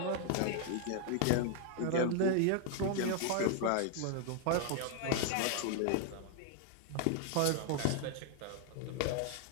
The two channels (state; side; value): different; both; correlation 0.00